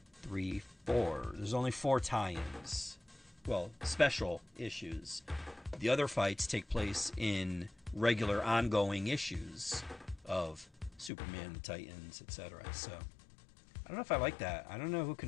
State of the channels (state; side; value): drops out; right; at 11.1 s